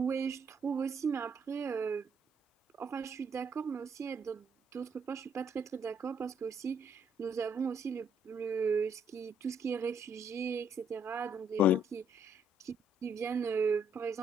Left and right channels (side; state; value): both; normal; correlation 0.69